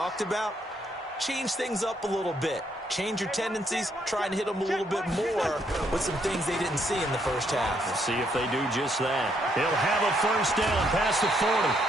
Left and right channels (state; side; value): normal; both; correlation 0.73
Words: about, change things up a little bit. Change your tendencies, try and hit them a little bit more with some things they didn't see in the first half. We'll see if they do just that. He'll have a first down past the 40.